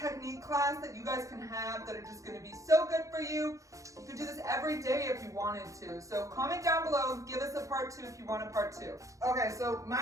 class that you guys can have that are just going to be so good for you. You can do this every day if you wanted to. So comment down below, give us a part 2 if you want a part 2. Okay, so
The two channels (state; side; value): late; left; 0.16 ms